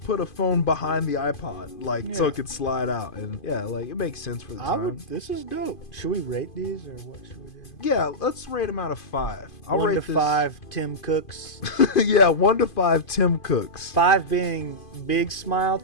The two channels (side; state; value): right; late; 2.5 ms